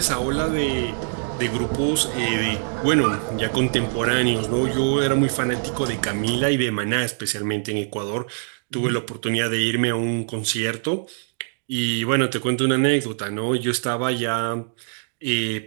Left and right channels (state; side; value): silent; left; 63 dB below the other